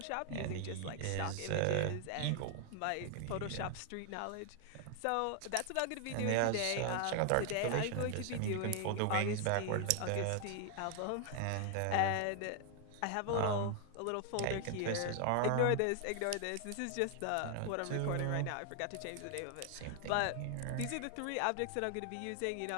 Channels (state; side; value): different; both; correlation 0.00